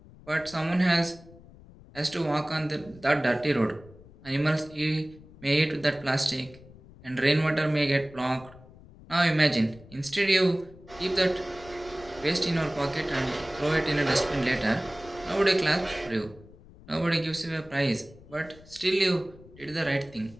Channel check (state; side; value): noise; left; rumble, 21 dB below the sound